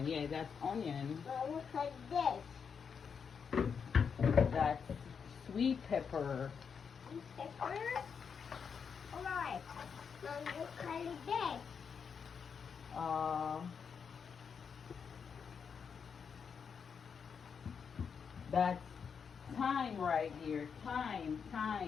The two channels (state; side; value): quieter; right; 6.4 dB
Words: yeah, that's onion. Now look at this. That's sweet pepper. This pepper. Alright. Now look at this. That's thyme right here. Thyme.